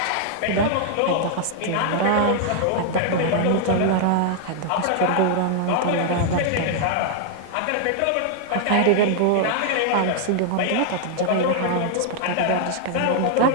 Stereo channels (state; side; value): different; both; correlation 0.00